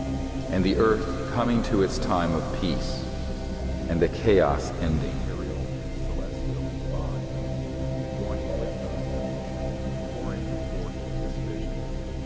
and the earth coming to its time of peace, and the chaos ending.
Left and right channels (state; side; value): identical; both; correlation 1.00